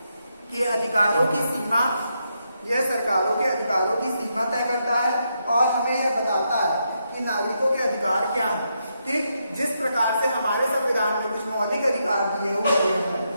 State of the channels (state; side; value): inverted; both; correlation -0.81